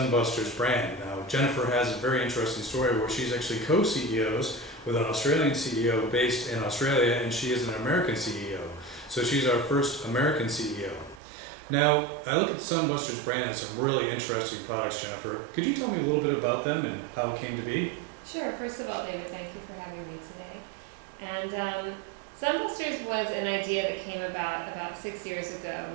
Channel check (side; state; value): left; drops out; at 11.2 s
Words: brand. Now, Jennifer has a very interesting story where she's actually co-CEOs with an Australian CEO based in Australia, and she is an American CEO. So she's our first American CEO. Now, I look at the Sunbusters brand and some really interesting products, Jennifer. Could you tell me a little bit about them and how it came to be? Sure. First of all, David, thank you for having me today. And Sunbusters was an idea that came about 6 years ago.